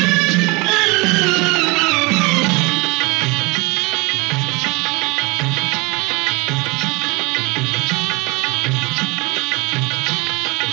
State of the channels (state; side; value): quieter; left; 26.2 dB